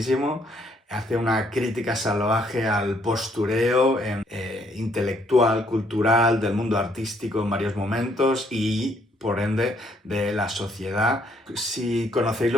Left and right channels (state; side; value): normal; both; correlation 0.68